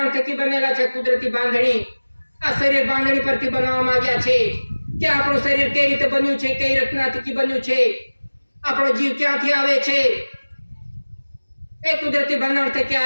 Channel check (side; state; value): both; inverted; correlation -1.00